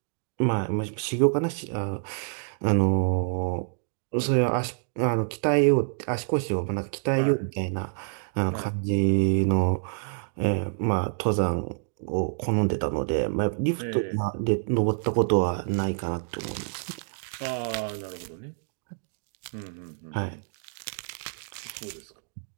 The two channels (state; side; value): silent; left; digital silence